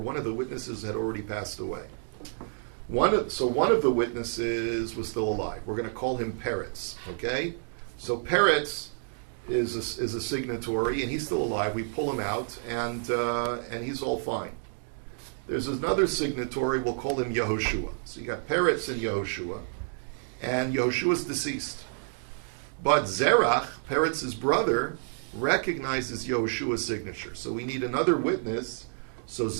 of the witnesses had already passed away. One of the witnesses was still alive. We're going to call him Peretz, okay? So Peretz is a signatory and he's still alive. We pull him out and he's all fine. There's another signatory, we'll call him Yehoshua. So you got Peretz and Yehoshua's deceased. But Zerach, Peretz's brother, recognizes Yehoshua's signature. So we need another witness. So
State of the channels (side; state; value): left; silent; digital silence